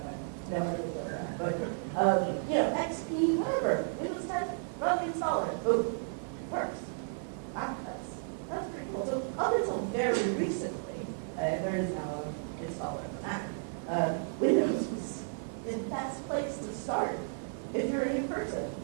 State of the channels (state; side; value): silent; left; 56 dB below the other